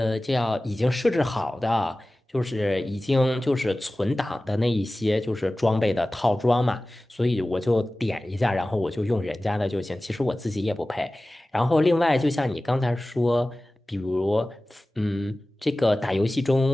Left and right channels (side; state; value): both; normal; correlation 0.97